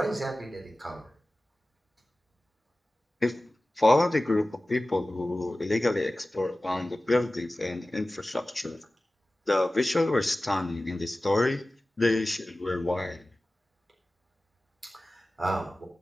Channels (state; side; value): normal; both; correlation 0.97